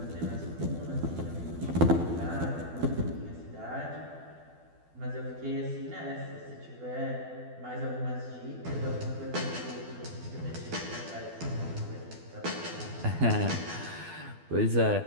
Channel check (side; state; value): left; late; 12 ms